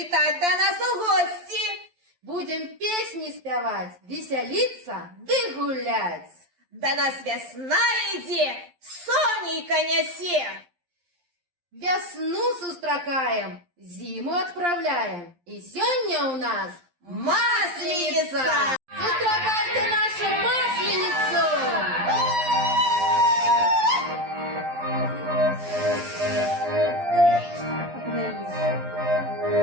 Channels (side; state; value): left; late; 11 ms